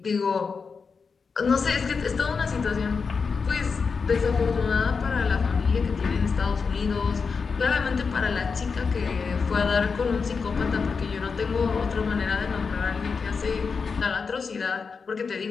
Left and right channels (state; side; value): quieter; right; 5.2 dB